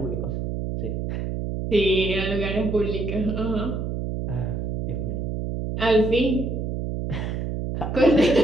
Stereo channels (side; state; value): right; noise; hum, 3 dB below the sound